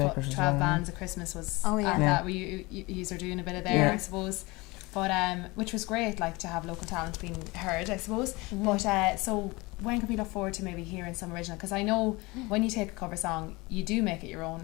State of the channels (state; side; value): quieter; right; 23.7 dB